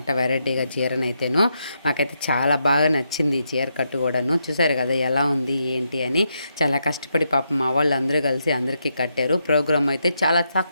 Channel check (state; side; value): inverted; both; correlation -0.81